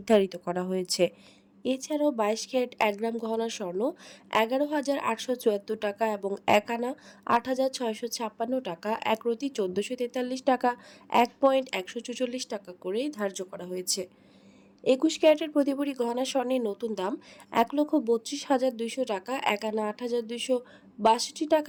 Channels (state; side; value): identical; both; correlation 1.00